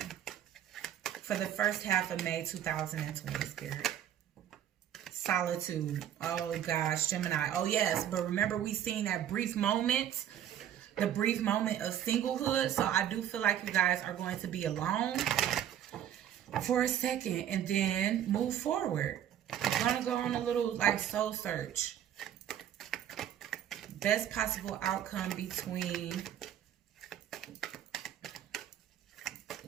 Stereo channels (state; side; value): quieter; left; 10.5 dB